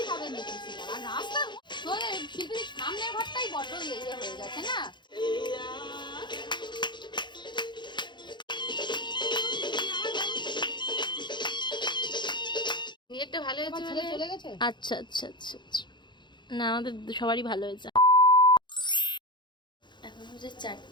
হবে দেখছি। আর রাস্তা তোর শিল্পীর সামনের ঘরটাই বড় ইয়ে হয়ে গেছে না? নেটটা ভালো হয়েছে, ছেলে চলে গেছে। আচ্ছা আচ্ছা আচ্ছা আচ্ছা, না আমাদের সবারই ভালো হয়েছে। এখন হচ্ছে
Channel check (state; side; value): late; right; 0.22 ms